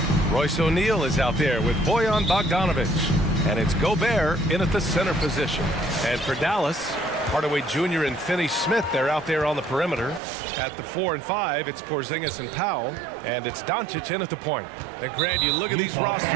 Royce O'Neal is out there with Bojan Bogdanovic. And it's Gobert in at the center position. And for Dallas, Hardaway Jr. and Finney-Smith, they're out there on the perimeter. At the 4 and 5, it's Porzingis and Powell. And it's Doncic in at the point. And Grant, you look at these rosters,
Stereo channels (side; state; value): left; drops out; at 10.2 s